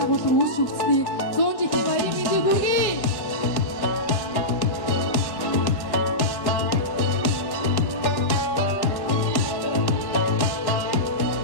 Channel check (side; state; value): right; late; 1.1 ms